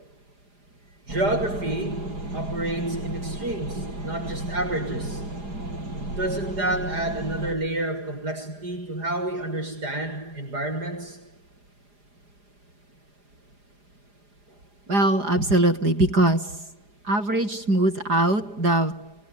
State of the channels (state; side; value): late; left; 4.9 ms